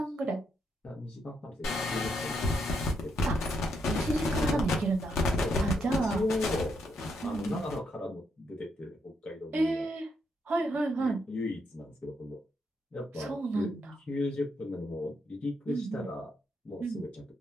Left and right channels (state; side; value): normal; both; correlation 0.78